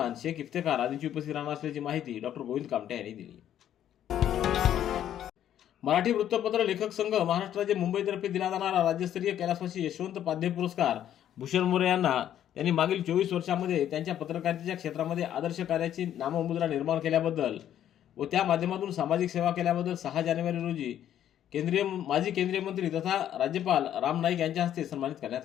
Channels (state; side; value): quieter; right; 10.8 dB